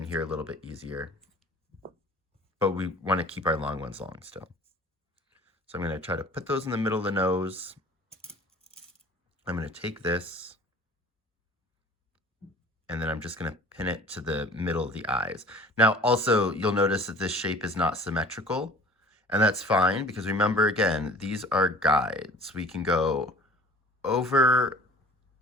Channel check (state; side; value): normal; both; correlation 0.47